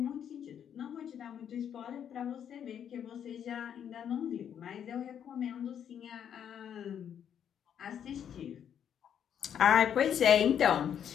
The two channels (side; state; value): right; quieter; 8.9 dB